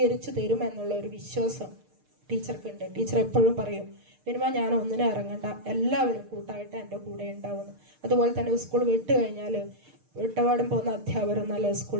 തരുമെന്നുള്ള ഒരു വിശ്വാസം ടീച്ചർക്കുണ്ട്. ടീച്ചർ എപ്പോഴും പറയും, മിനിമം ഞാൻ ഒന്നിനും ഇറങ്ങണ്ട, എല്ലാവരും കൂട്ടായിട്ട് എൻ്റെ കൂടെ ഉണ്ടാവുന്നു. അതുപോലെ തന്നെ സ്കൂൾ വിട്ട് കഴിഞ്ഞാൽ വിട്ടപാടും പോകുന്ന അധ്യാപകർ നല്ല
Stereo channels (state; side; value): late; left; 6.6 ms